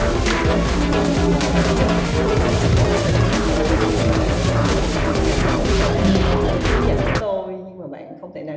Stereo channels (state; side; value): identical; both; correlation 1.00